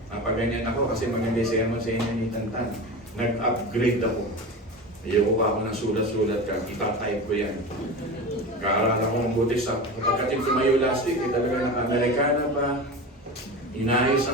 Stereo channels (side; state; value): both; normal; correlation 0.28